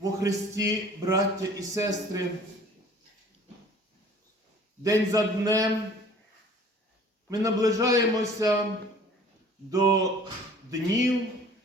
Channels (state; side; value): normal; both; correlation 0.50